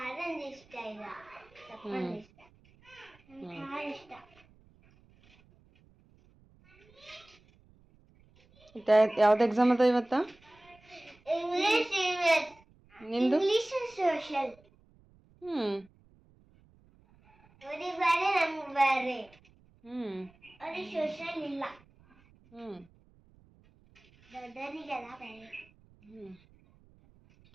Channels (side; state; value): right; noise; rumble, 29 dB below the sound